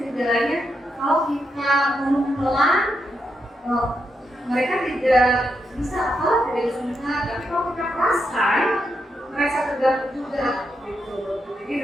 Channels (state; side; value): normal; both; correlation 0.83